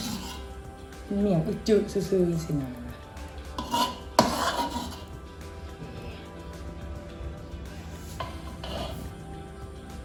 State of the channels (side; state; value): both; identical; correlation 1.00